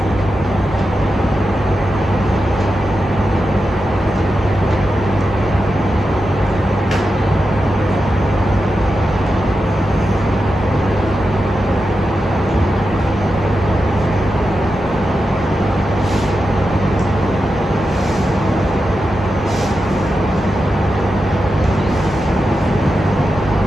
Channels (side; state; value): both; normal; correlation 0.89